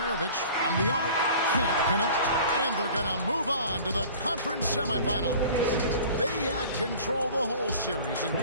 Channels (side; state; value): both; inverted; correlation -0.44